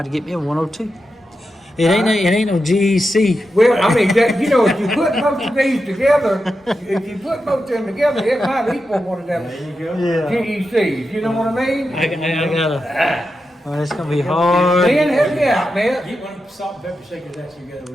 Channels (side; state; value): both; normal; correlation 0.89